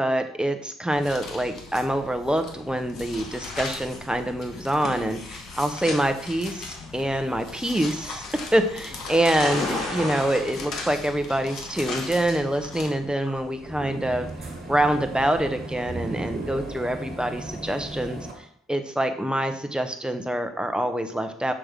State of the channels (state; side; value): normal; both; correlation 0.86